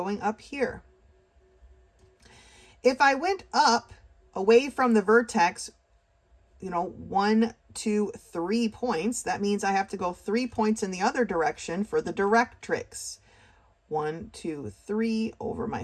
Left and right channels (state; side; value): identical; both; correlation 1.00